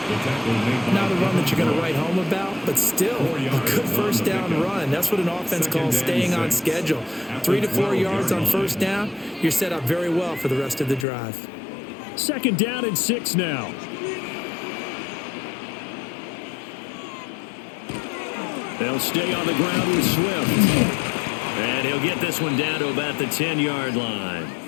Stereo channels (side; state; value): right; drops out; at 11.1 s